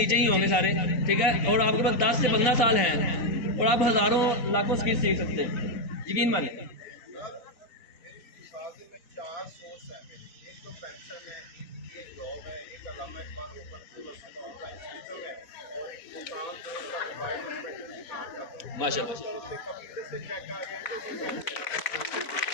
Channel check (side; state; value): right; late; 3.9 ms